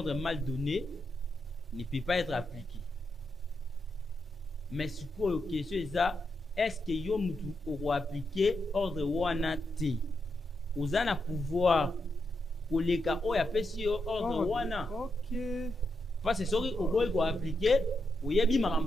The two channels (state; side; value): normal; both; correlation 0.84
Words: mal donné ne peut pas être appliqué. Mais ce que la question est ça, est-ce que vous aurez appliqué ordre wana te? Vous avez un pouvoir pour les cas où il y a pas ordre wana. Ok. Parce que si vous avez appliqué, vous avez